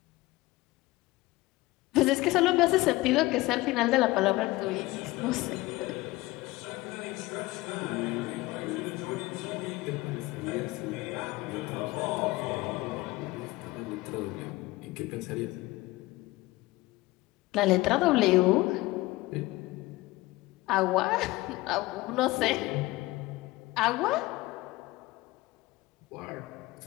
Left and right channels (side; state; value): right; quieter; 19.8 dB